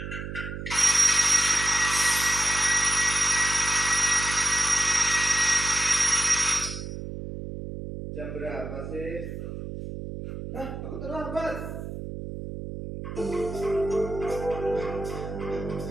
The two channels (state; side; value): noise; right; hum, 8 dB below the sound